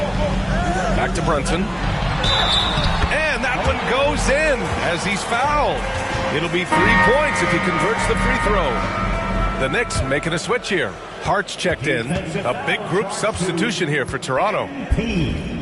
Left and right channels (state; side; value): identical; both; correlation 1.00